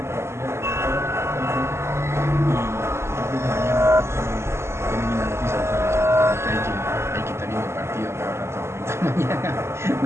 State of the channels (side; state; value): left; late; 0.13 ms